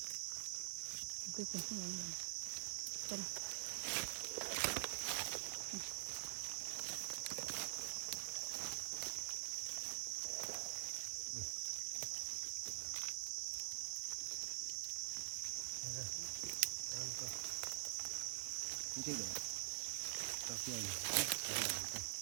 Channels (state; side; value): silent; left; digital silence